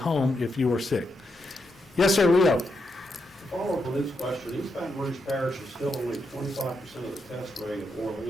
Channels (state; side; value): normal; both; correlation 0.83